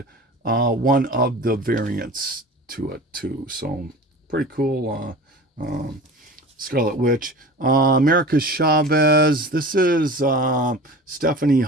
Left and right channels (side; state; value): both; normal; correlation 0.37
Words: one of the variants to it too. So pretty cool. Scarlet Witch. America Chavez. This is Stephanie